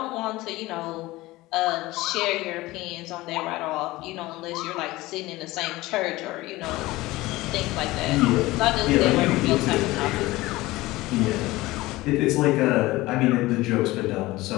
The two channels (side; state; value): right; quieter; 19.2 dB